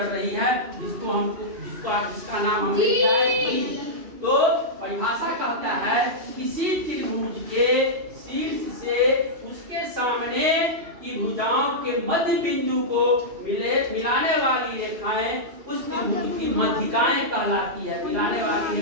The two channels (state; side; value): late; left; 2.8 ms